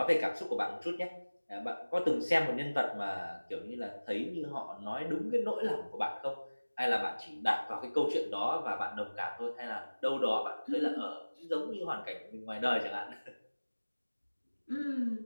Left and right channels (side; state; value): both; inverted; correlation -1.00